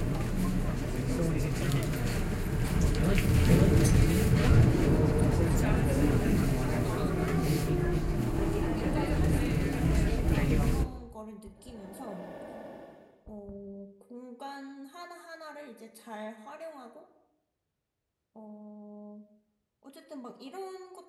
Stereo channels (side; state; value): both; identical; correlation 1.00